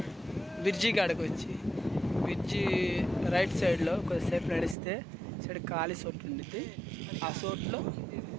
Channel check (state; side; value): drops out; left; at 4.8 s